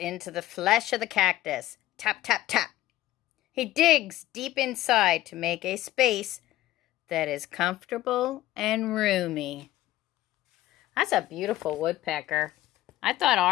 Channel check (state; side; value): quieter; right; 15.2 dB